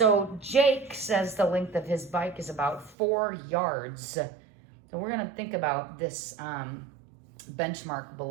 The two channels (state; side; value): drops out; left; at 3.0 s